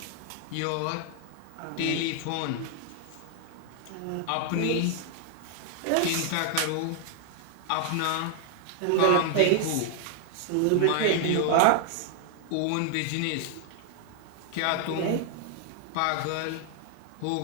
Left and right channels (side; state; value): both; different; correlation 0.00